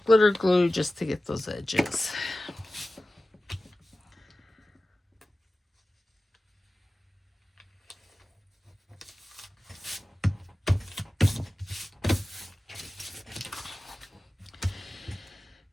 glitter glue just to get those edges.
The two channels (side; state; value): both; normal; correlation 0.95